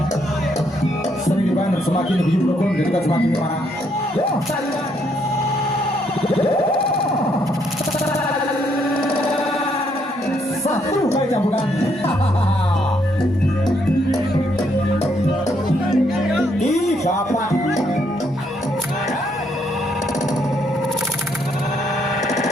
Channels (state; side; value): normal; both; correlation 0.73